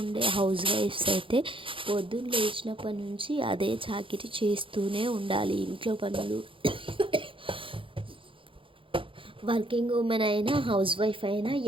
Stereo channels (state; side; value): late; left; 0.25 ms